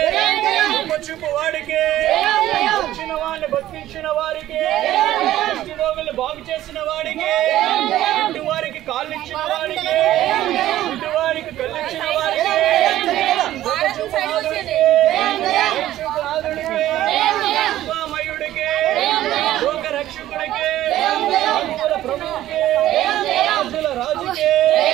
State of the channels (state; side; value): quieter; left; 13.8 dB